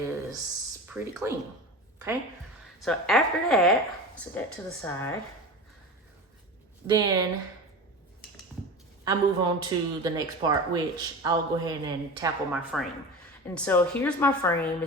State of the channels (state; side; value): normal; both; correlation 0.30